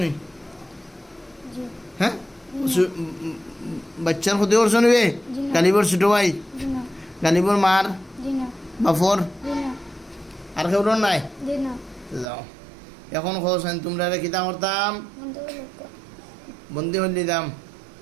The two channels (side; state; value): left; drops out; at 12.2 s